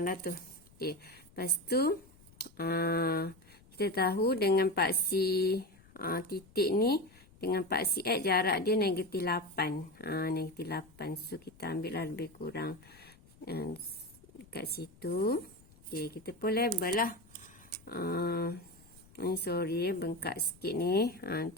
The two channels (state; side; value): noise; left; rumble, 26 dB below the sound